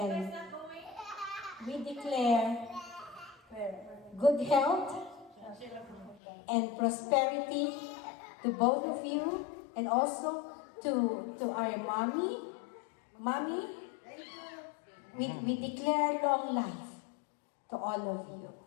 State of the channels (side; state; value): right; drops out; at 6.2 s